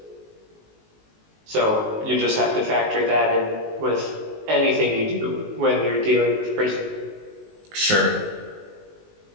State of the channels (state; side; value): late; left; 19 ms